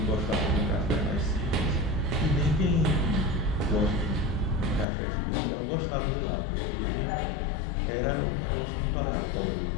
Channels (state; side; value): drops out; right; at 4.9 s